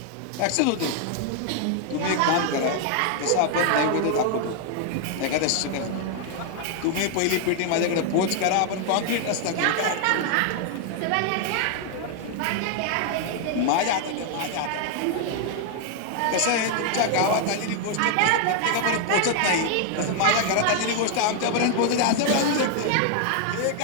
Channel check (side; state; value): both; different; correlation 0.00